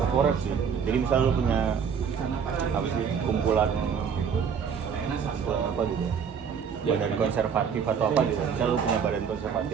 sih. Jadi misal lu punya apa sih kumpulan apa gitu, badan konservatif atau apa gitu. Misal lu punya badan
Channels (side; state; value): left; quieter; 6.9 dB